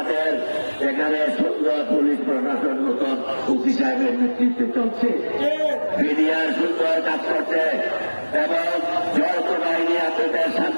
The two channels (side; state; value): both; inverted; correlation -1.00